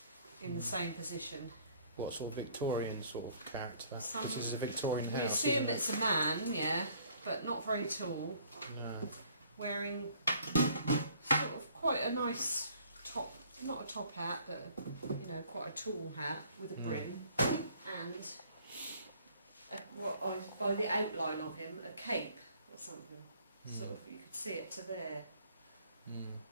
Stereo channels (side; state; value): both; inverted; correlation -0.58